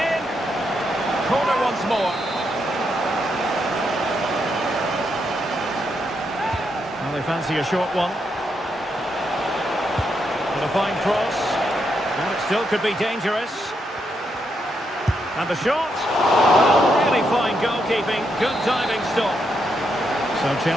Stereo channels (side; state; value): both; normal; correlation 0.80